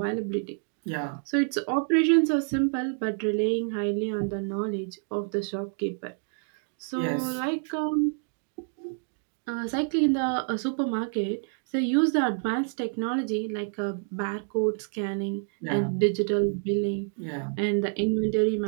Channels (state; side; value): silent; left; 59 dB below the other